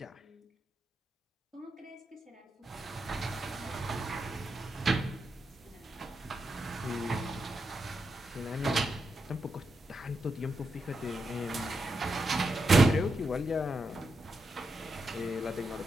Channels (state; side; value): normal; both; correlation 0.85